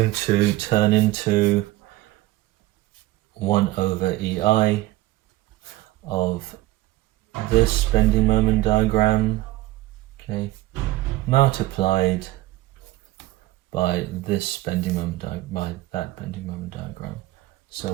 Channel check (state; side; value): quieter; left; 17.3 dB